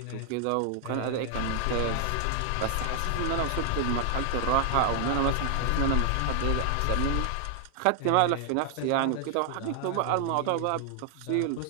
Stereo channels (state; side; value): different; both; correlation 0.00